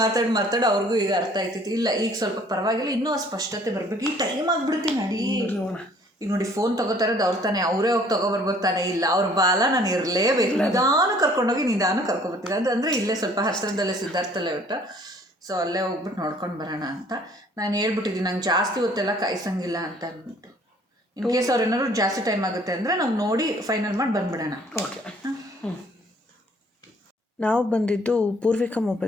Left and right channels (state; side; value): normal; both; correlation 0.57